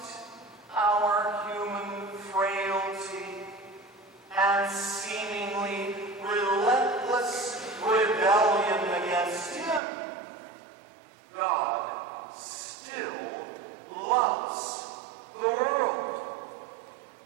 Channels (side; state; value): left; drops out; at 9.8 s